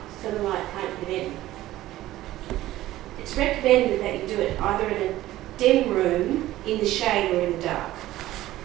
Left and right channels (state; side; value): quieter; left; 15.4 dB